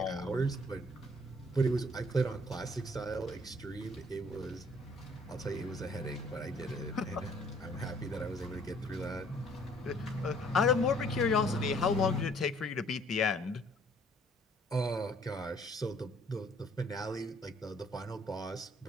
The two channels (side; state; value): both; normal; correlation 0.60